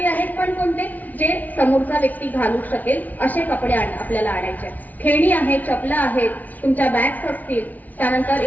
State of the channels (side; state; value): right; late; 0.077 ms